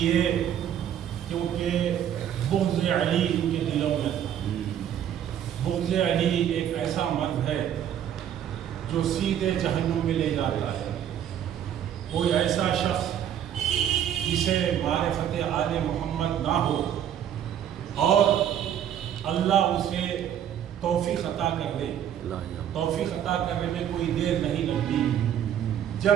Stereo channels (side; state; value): left; quieter; 10.0 dB